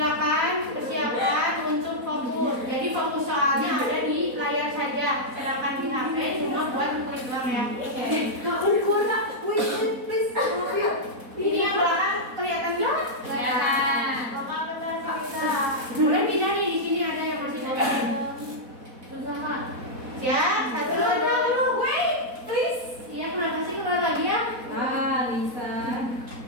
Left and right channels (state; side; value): late; left; 4.1 ms